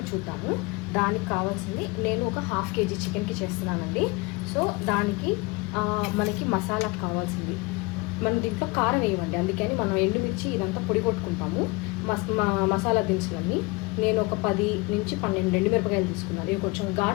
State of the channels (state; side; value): quieter; right; 25.4 dB